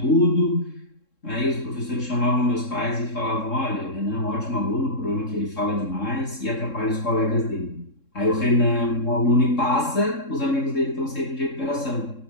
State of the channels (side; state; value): right; late; 3.7 ms